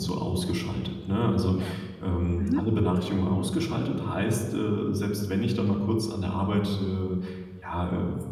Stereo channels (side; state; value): both; identical; correlation 1.00